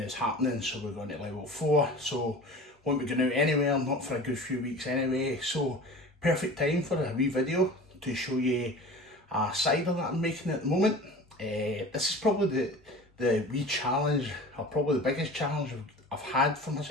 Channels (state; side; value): normal; both; correlation 0.38